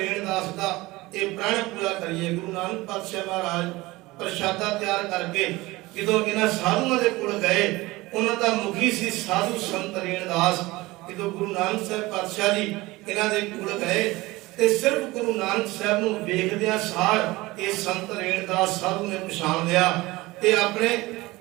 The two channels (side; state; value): left; quieter; 20.5 dB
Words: ਦਾ ਇਹ ਪ੍ਰਣ ਪੂਰਾ ਕਰੀਏ। ਗੁਰੂ ਨਾਨਕ ਪਾਤਸ਼ਾਹ ਮਹਾਰਾਜ ਪ੍ਰਸ਼ਾਦਾ ਤਿਆਰ ਕਰਕੇ ਜਦੋਂ ਇਹਨਾਂ ਸਾਧੂਆਂ ਦੇ ਕੋਲ ਗਏ, ਉਹਨਾਂ ਦਾ ਮੁਖੀ ਸੀ ਸਾਧੂ ਸੰਤ ਰੇਣਦਾਸ। ਜਦੋਂ ਗੁਰੂ ਨਾਨਕ ਸਾਹਿਬ ਪਾਤਸ਼ਾਹ ਜੀ ਇਹਨਾਂ ਦੇ ਕੋਲ ਗਏ ਤੇ ਸਿਰਫ ਗੁਰੂ ਨਾਨਕ ਸਾਹਿਬ ਨੂੰ ਵੇਖਦਿਆਂ ਸਾਰ ਇਹ ਸੰਤ ਰੇਣਦਾਸ ਸਾਧੂ ਨੇ ਪਛਾਣ ਲਿਆ ਤੇ ਆਪਣੇ